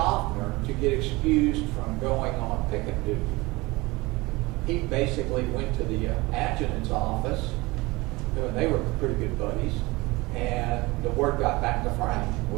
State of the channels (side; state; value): left; quieter; 22.5 dB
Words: to get excused from going on picket duty. He basically went to the adjutant's office, and they were pretty good buddies, and the word got back to Frank.